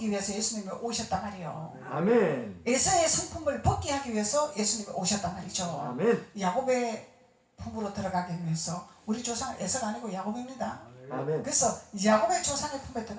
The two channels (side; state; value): both; identical; correlation 1.00